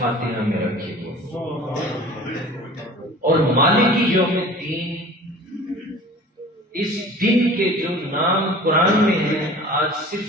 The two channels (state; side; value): normal; both; correlation 0.42